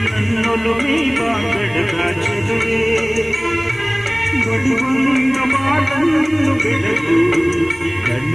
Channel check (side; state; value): right; noise; hiss, 26 dB below the sound